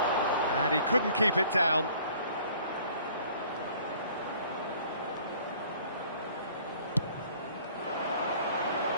And he couldn't keep it down.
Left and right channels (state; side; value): inverted; both; correlation -0.54